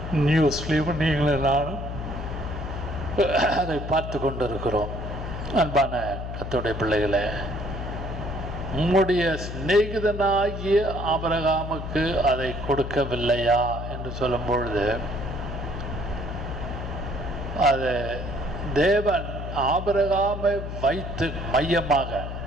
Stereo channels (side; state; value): left; noise; hum, 6 dB below the sound